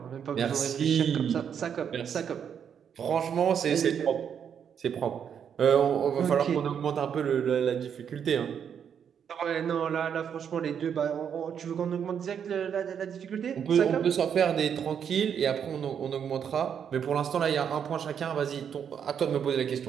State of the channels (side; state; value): left; quieter; 7.9 dB